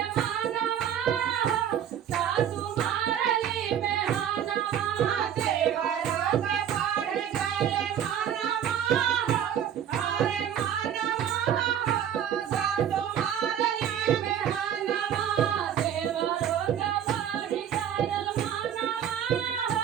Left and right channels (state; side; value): quieter; left; 9.4 dB